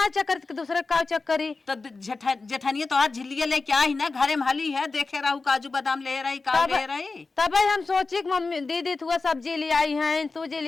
चक्कर दूसरे का चक्करी तो जेठानिया तोहर झिल्लिया लेके आई ना घरे में हली है देखे रहू काजू बादाम ले रही का ले रही तब हम सोची कि मम्मी दीदी तू सब्जी ले आई है तू जी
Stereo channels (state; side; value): quieter; right; 3.9 dB